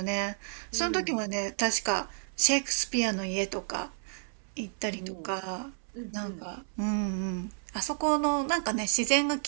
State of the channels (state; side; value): silent; left; 57 dB below the other